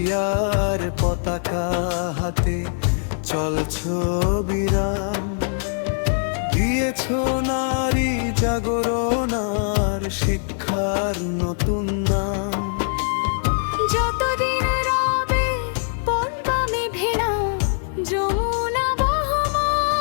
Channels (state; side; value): silent; right; digital silence